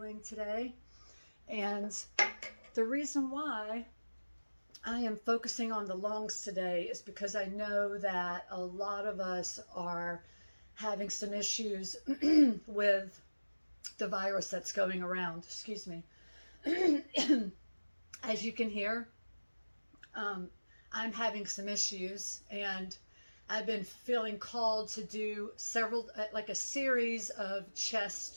today. And the reason why I am focusing on the lungs today is because I know that a lot of us are having some issues with the virus that's going around. Excuse me. As you can hear, I'm having some issues, and I've been feeling called to do several, like a series of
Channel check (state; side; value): inverted; both; correlation -1.00